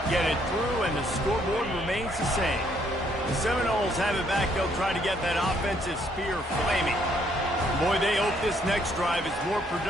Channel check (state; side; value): normal; both; correlation 0.69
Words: get it through, and the scoreboard remains the same. The Seminoles have it back. They'll try to get that offensive spear flaming. Boy, they hope this next drive is more